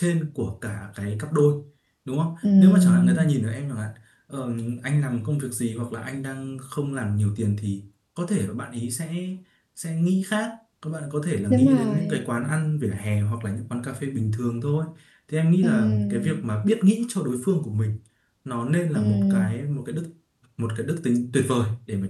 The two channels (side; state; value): both; identical; correlation 1.00